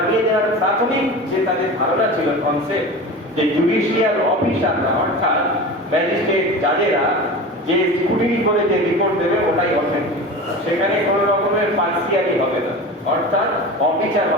দেওয়ার প্রাথমিক যে তাদের ধারণা ছিল, কনসেপ্ট, যে জুডিশিয়াল অফিসাররা অর্থাৎ ম্যাজিস্ট্রেট জাজেরা যে স্কুটিনি করে যে রিপোর্ট দেবে ওটাই অথেন্টিক, সেখানে কোনো রকমের পার্সিয়ালি হবে না, অর্থাৎ অবিচার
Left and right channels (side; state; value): both; normal; correlation 0.31